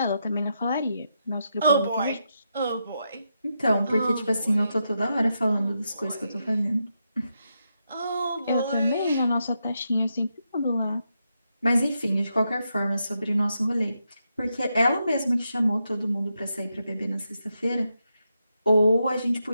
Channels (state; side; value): inverted; both; correlation -0.84